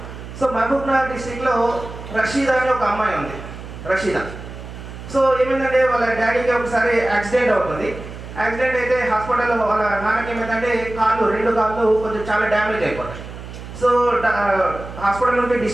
సో మహబూబ్నగర్ డిస్టిక్లో రషీదా అని ఒక అమ్మాయి ఉంది, రషీదా. సో ఏమైందంటే వాళ్ళ డాడీకి ఒకసారి యాక్సిడెంట్ అవుతుంది. యాక్సిడెంట్ అయితే హాస్పిటల్లో వాళ్ళ నాన్నకి ఏమైందంటే రెండు కాళ్ళు కొంచెం చాలా డ్యామేజ్ అయిపోతాయి. సో హాస్పిటల్ నుండి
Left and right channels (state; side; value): noise; right; hum, 12 dB below the sound